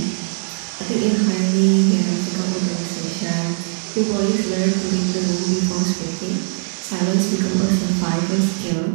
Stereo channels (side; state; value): left; silent; 59 dB below the other